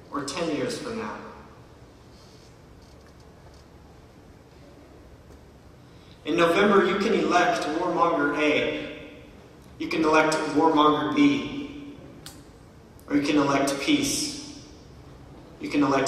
or 10 years from now. In November, you can elect warmonger A, you can elect warmonger B, or you can elect peace. You can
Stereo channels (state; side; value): identical; both; correlation 1.00